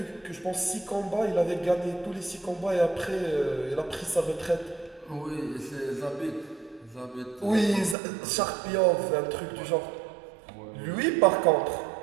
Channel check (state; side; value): drops out; left; at 8.0 s